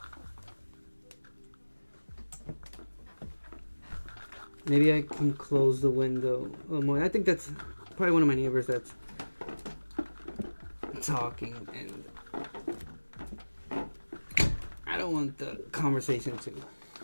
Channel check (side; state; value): both; inverted; correlation -1.00